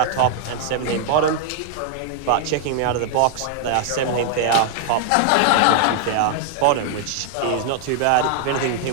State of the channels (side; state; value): both; different; correlation 0.00